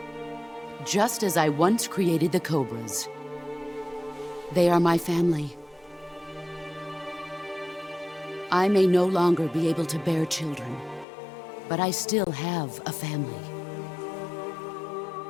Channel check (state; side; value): drops out; right; at 11.1 s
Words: Just as I once created the Cobras. They are my family. I may no longer be able to bear children, but I still have a family.